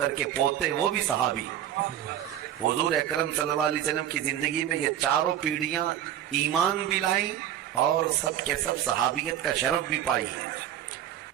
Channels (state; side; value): quieter; left; 11.1 dB